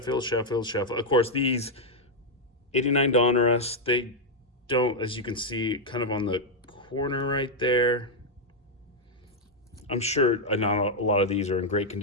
course, these 89 Donruss, they don't, as you can see, kind of on the corner right there. I'm sure not a lot of these are in great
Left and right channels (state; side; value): normal; both; correlation -0.01